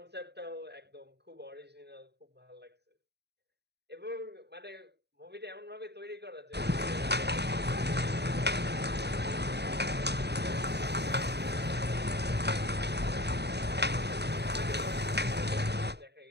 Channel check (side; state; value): left; late; 0.49 ms